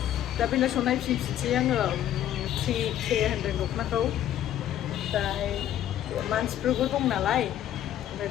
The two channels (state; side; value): quieter; right; 11.6 dB